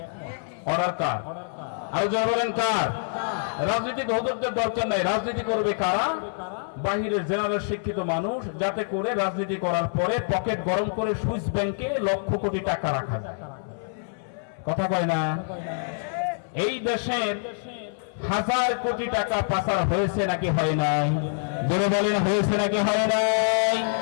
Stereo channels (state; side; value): silent; right; 61 dB below the other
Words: অর্ডার কার? আরো যারা বলেন কার? রাজনীতি হুজুরদের দরকার নাই। রাজনীতি করবে কারা? বাহিরের জেনারেল শিক্ষিত মানুষ, যাতে করে রাজনীতি করার পরে পকেট গরম করে সুইস ব্যাংকে লক্ষ কোটি টাকা রাখা যায়। কথা কয় না? এই দেশের 1000 কোটি টাকা পাচার হয়েছে নাকি হয় নাই? জোরে বলেন হয়েছে নাকি হয় নাই?